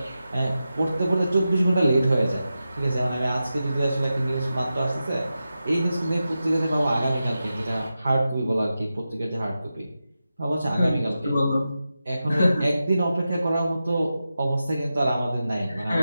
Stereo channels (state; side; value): inverted; both; correlation -0.91